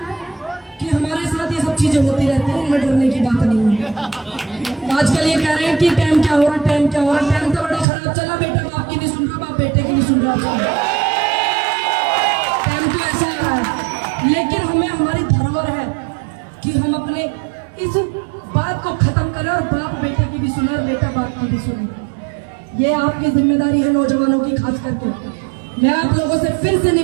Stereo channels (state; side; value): drops out; left; at 7.9 s